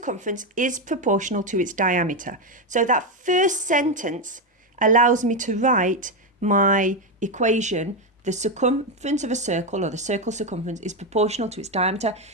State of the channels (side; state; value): both; normal; correlation 0.09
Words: is proportional to its diameter. So that first sentence allows me to write my equation. The circumference of a circle, or the circle's circumference, is proportional to its diameter.